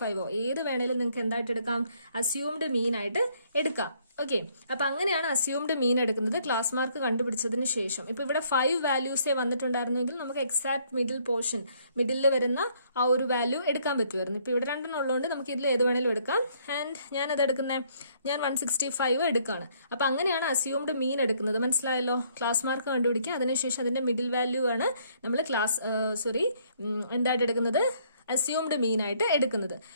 ഏത് വേണേലും നിങ്ങൾക്ക് എന്തായിട്ട് എടുക്കാം? അസ്യൂംഡ് മീൻ ആയിട്ട് എടുക്കാം. ഓക്കെ, അപ്പൊ അങ്ങനെയാണ് അസ്യൂംഡ് മീൻ എടുക്കുന്നത് ക്ലാസ് മാർക്ക് കണ്ടുപിടിച്ചതിന് ശേഷം. ഇപ്പൊ ഇവിടെ 5 വാല്യൂസേ വന്നിട്ടുണ്ടായിരുന്നെങ്കിൽ നമുക്ക് എക്സാക്ട് മിഡിൽ പോർഷൻ, മിഡിലിൽ വരുന്ന ആ ഒരു വാല്യൂ എടുക്കാൻ പറ്റുമായിരുന്നു. ഇപ്പൊ ഇവിടെ 2 ഉള്ളതുകൊണ്ട് നമുക്ക് ഇതിൽ ഏത് വേണേലും എടുക്കാം. ആൻഡ് ഞാൻ 165 എടുക്കാണ്. അപ്പൊ അങ്ങനെയാണ് അസ്യൂംഡ് മീൻ എടുക്കുന്നത്. മനസ്സിലായല്ലോ? ക്ലാസ് മാർക്ക് കണ്ടുപിടിക്കുക, അതിനുശേഷം അതിന്റെ മിഡിൽ വാല്യൂ ആണ് നമ്മൾ എന്തായിട്ട് എടുക്കുന്നത്? അസ്യൂംഡ് മീൻ ആയിട്ട് എടുക്കുന്നത്.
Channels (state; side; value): inverted; both; correlation -0.66